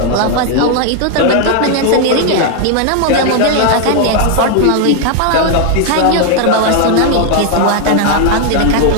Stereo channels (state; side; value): different; both; correlation 0.00